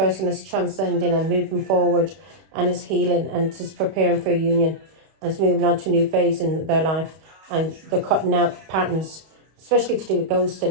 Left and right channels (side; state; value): left; late; 31 ms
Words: is transcending and moving forward and is healing and is preparing for a union and is moving on to a new phase in their life, and they're cutting out patterns, especially to do with